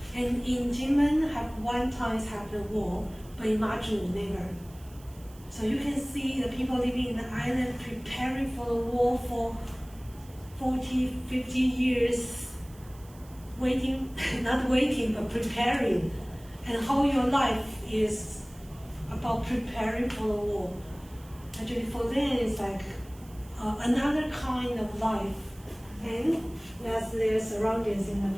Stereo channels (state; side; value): noise; right; hiss, 24 dB below the sound